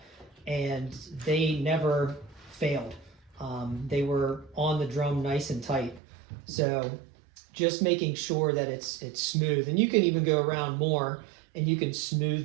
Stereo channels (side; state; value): left; drops out; at 6.0 s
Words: and they never failed. They were on the drum nice and tight. So just making sure that it's smooth, and you can even go around more and you can